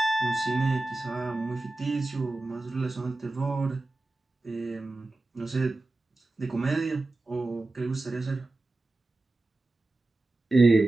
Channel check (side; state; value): left; quieter; 3.0 dB